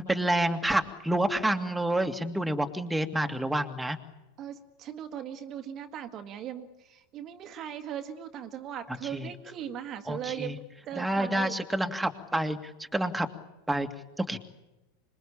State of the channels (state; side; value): normal; both; correlation 0.88